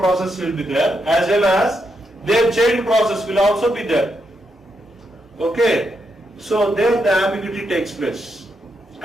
will be there, as well as their child process will also be there. Okay. So there the ambiguity takes place,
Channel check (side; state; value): both; normal; correlation 0.82